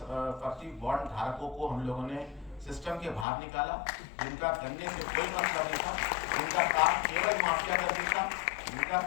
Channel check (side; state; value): right; drops out; at 3.2 s